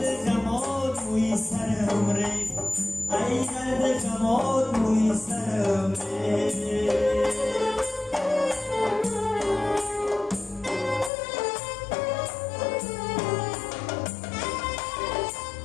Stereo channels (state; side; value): drops out; right; at 11.1 s